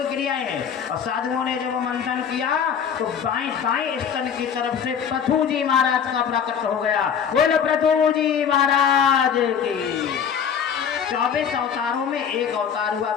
क्रियाएं हैं। और साधुओं ने जब मंथन किया तो दाएं स्तन की तरफ से पृथु जी महाराज का प्रकट हो गया। बोलो पृथु जी महाराज की। 24 अवतारों में एक अवतार हुआ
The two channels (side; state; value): right; quieter; 7.6 dB